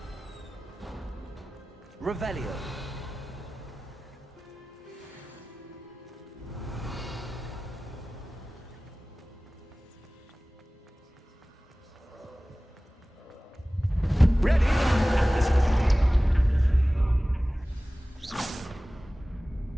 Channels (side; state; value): both; normal; correlation 0.97